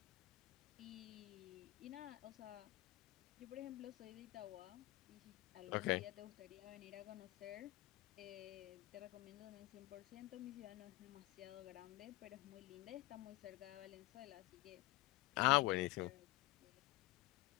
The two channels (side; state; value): right; quieter; 19.1 dB